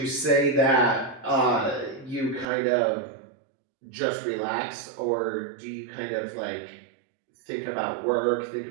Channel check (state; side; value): drops out; left; at 2.5 s